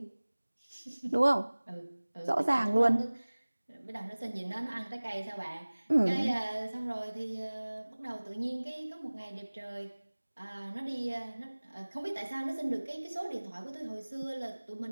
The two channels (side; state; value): both; inverted; correlation -1.00